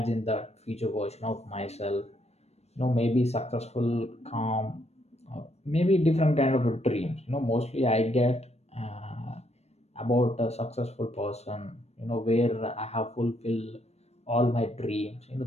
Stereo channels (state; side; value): late; right; 0.31 ms